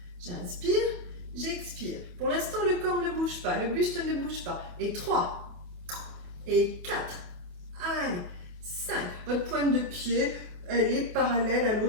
J'inspire, j'expire. Pour l'instant, le corps ne bouge pas, le buste ne bouge pas. Et 3, et 4, allez, 5. Votre pointe de pied, elle est parallèle à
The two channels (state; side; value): late; left; 28 ms